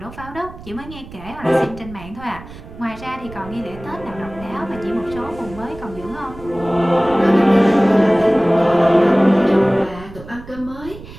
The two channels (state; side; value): noise; right; rumble, 16 dB below the sound